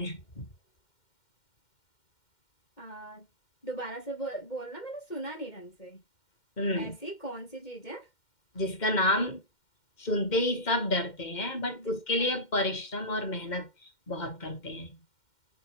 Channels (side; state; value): right; late; 2.1 ms